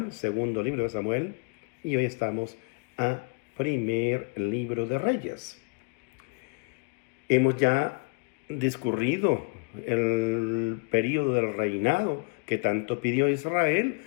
segundo libro de Samuel, y hoy estamos a primer libro de Reyes. Hemos ya discurrido el periodo del reinado que tanto pidió Israel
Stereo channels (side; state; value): right; quieter; 33.6 dB